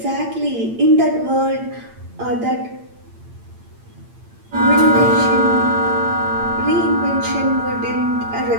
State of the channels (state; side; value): late; left; 8.8 ms